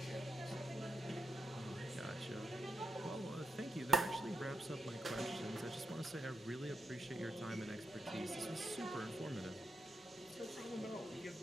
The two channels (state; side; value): noise; left; hum, 27 dB below the sound